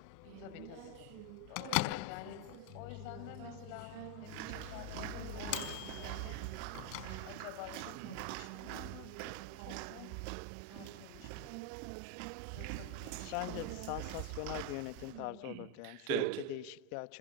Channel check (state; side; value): different; both; correlation 0.01